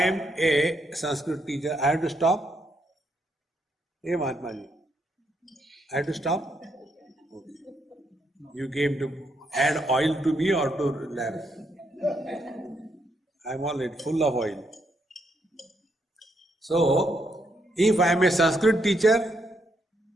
a Sanskrit teacher, I have to stop? Hey Mahatma ji, I have to stop? Okay. You came to add oil to me or to lamp? I am already full of oil. So, if I am a Sanskrit teacher,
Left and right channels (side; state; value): both; normal; correlation 0.77